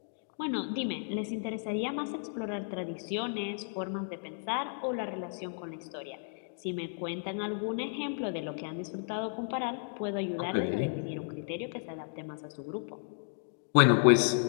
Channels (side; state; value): right; silent; digital silence